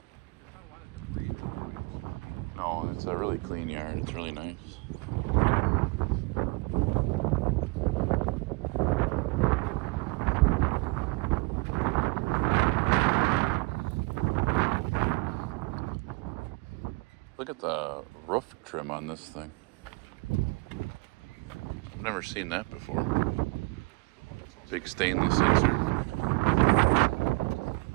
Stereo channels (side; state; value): left; quieter; 25.9 dB